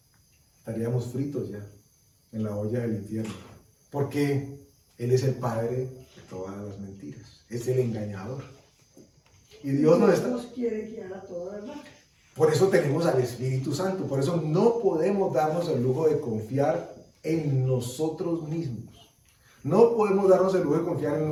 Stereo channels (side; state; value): both; identical; correlation 1.00